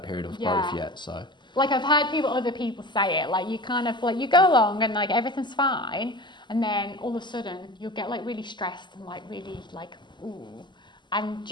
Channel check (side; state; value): right; late; 0.22 ms